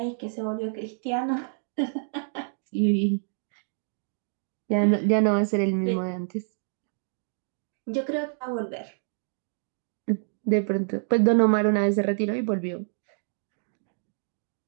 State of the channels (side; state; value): left; silent; digital silence